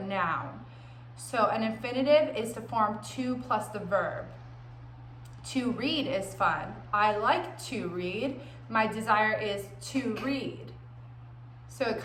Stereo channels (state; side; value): identical; both; correlation 1.00